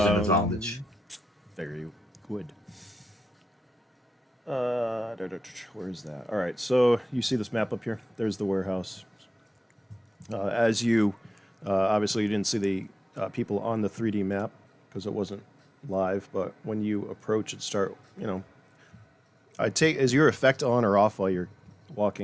an advantage. Very good. Where is that? All right, so you see this map up here? There's the warehouse. As you, obviously you didn't see the people on the 3D map because it wasn't live, but when you approach it, start, is your effect on or off while you're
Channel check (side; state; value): both; normal; correlation 0.94